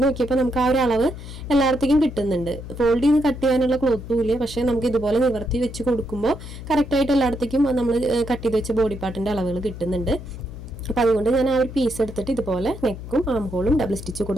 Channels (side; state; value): left; noise; hum, 11 dB below the sound